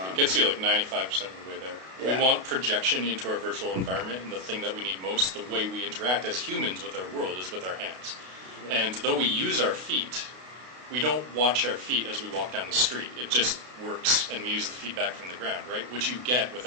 gets you like 95% of the way there. Yeah. We want projection into our virtual environment, and the thing that we need most, the way we interact as humans with our world, is with our hands. Yeah. And though we use our feet, we don't watch our feet as we walk down the street. It just works, and we use the feedback from the ground, right? Which you get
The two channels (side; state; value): left; late; 32 ms